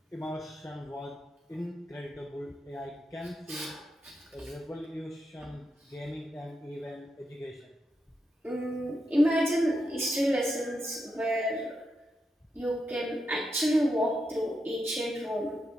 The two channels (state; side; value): normal; both; correlation 0.85